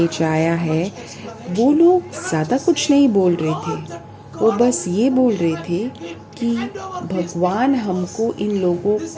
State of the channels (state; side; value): identical; both; correlation 1.00